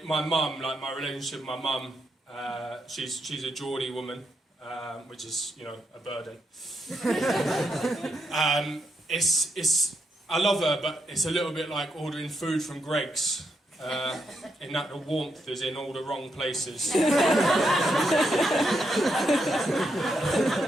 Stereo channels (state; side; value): normal; both; correlation 0.81